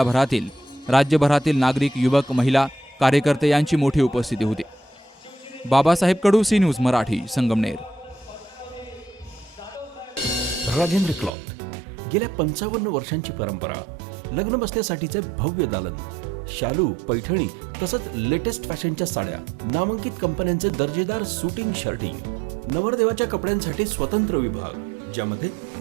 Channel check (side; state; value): left; drops out; at 11.3 s